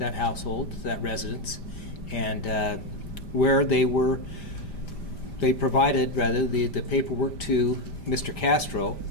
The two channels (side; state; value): right; late; 5.0 ms